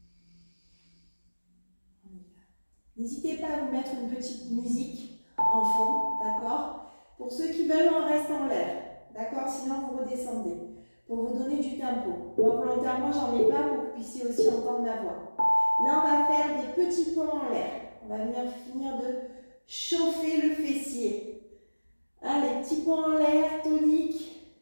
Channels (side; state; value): both; inverted; correlation -1.00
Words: N'hésitez pas à vous mettre une petite musique en fond, d'accord? Pour ceux qui veulent, on reste en l'air, d'accord? Sinon, vous redescendez. Pour vous donner du tempo. Moi, volontairement, j'en ai pas pour que vous puissiez aussi entendre ma voix. Là, on va faire des petits ponts en l'air. On va venir finir de chauffer le fessier. Allez, petits ponts en l'air, tonique.